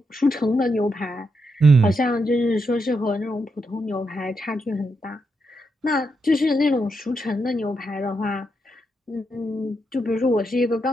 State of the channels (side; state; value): both; normal; correlation 0.82